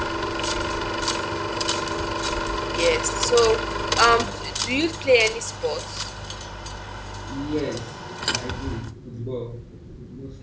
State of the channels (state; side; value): identical; both; correlation 1.00